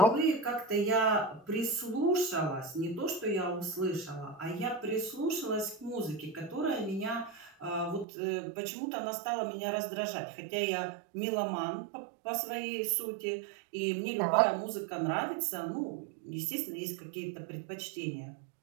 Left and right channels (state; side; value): drops out; left; at 8.1 s